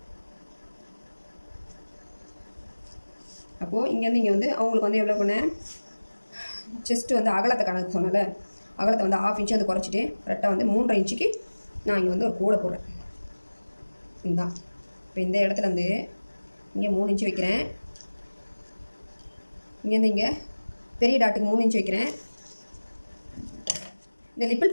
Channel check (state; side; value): inverted; both; correlation -1.00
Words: அப்போது இங்கேருந்து இங்கே வந்து அவங்களுக்கு வந்து எவ்வளோ பண்ணேன், செஸ்ட்டு வந்து அகலத்தை கணக்கு சொன்னால அகலத்தை வந்து 1/2 இன்ச்சு வந்து குறைச்சிட்டு கரெக்டாக வந்து 3.5 இன்ச்சுக்கு நான் இங்கே வந்து ஒரு கோடை போடுறேன். இதுதான். இப்போ இந்த இடத்துல வந்து இங்கே 3 இன்ச்சு வைக்கிறேன். இங்கேருந்து இங்கே பெரிய டாட்டுக்கு 3 இன்ச்சு வைக்கிறேன். இந்த லிப்பிள்